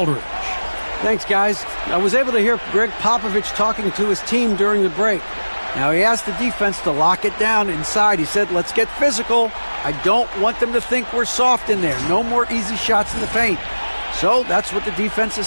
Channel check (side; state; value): both; inverted; correlation -1.00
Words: Thanks, guys. I was able to hear Greg Popovich talking to his team during the break. Now, he asked the defense to lock it down inside. He said, let's get physical. I don't want them to think we're soft in there. No more easy shots in the paint. So that's what the defense is